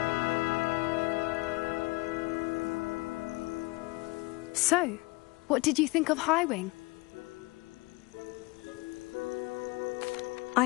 So, what did you think of Highwing?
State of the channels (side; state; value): right; quieter; 24.6 dB